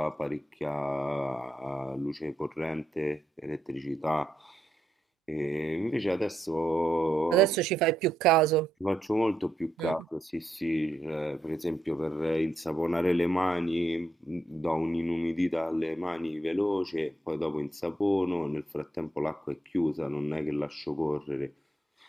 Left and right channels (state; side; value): normal; both; correlation 0.80